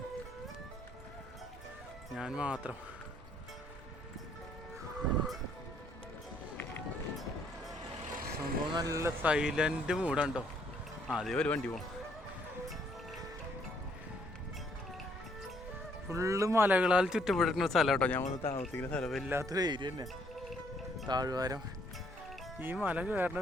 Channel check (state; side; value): normal; both; correlation 0.67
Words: ഞാൻ മാത്രം. സംഭവം നല്ല സൈലന്റ് മൂഡുണ്ടോ. അതേ ഒരു വണ്ടി പോകണം. ഫുള്ള് മലകളാൽ ചുറ്റപ്പെട്ടിരിക്കുന്ന സ്ഥലം കേട്ടോ. ഞാൻ വന്ന് താമസിക്കുന്ന സ്ഥലം വല്ലാത്തൊരു ഏരിയ തന്നെ, താഴ്വാരം. ഈ മല